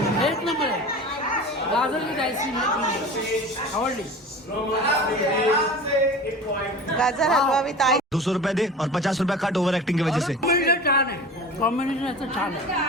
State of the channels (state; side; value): normal; both; correlation 0.36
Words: एक नंबर आहे. गाजर विथ आईस्क्रीम आवडली. गाजर हलवा विथ आई. 200 रुपए दे और 50 रुपए कट ओवर एक्टिंग की वजह से. कॉम्बिनेशन छान आहे, कॉम्बिनेशन याचं छान आहे.